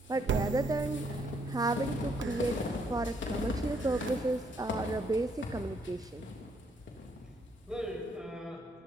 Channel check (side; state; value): both; normal; correlation 0.71